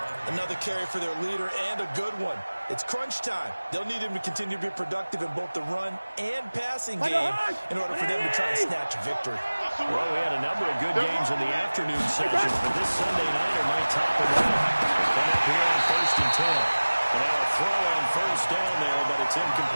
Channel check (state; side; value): inverted; both; correlation -1.00